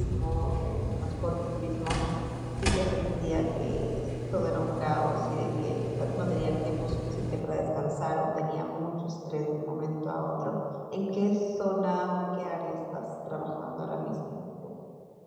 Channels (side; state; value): both; identical; correlation 1.00